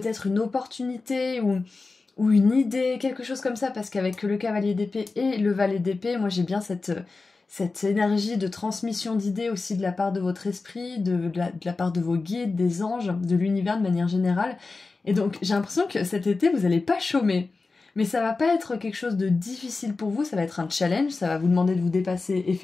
une opportunité ou une idée, quelque chose comme ça, parce qu'avec le cavalier d'épée et le valet d'épée, moi j'ai bien cette énergie de transmission d'idées aussi de la part de votre esprit, de la part de vos guides, des anges, de l'univers de manière générale. Et donc j'ai l'impression que cet été, vous n'allez pas chômer. Mais ça va pas être quelque chose de difficile pour vous, ça va être un challenge, ça va vous demander de vous dépasser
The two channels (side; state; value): right; quieter; 3.9 dB